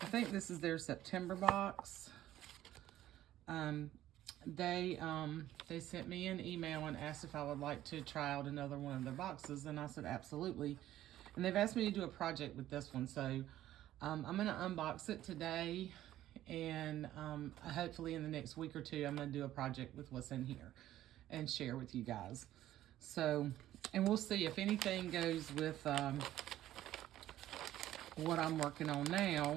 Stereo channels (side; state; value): left; quieter; 13.4 dB